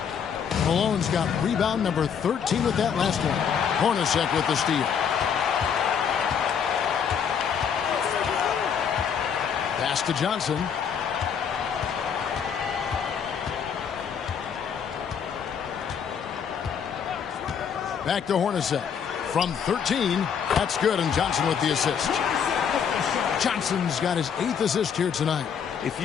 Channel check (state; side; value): quieter; right; 7.4 dB